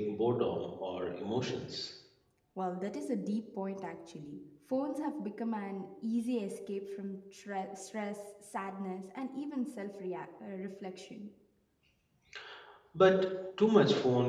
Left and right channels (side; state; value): both; identical; correlation 1.00